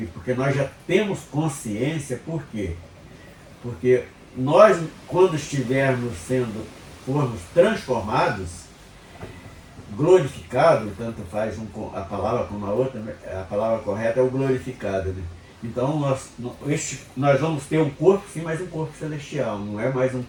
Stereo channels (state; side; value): identical; both; correlation 1.00